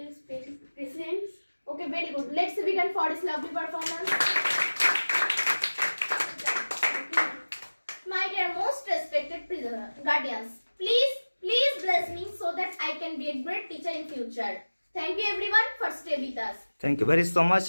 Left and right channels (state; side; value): inverted; both; correlation -1.00